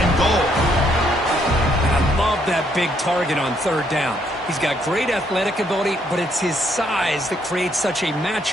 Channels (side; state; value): both; normal; correlation 0.71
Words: goal. Love that big target on third down. He's got great athletic ability, but it's his size that creates such a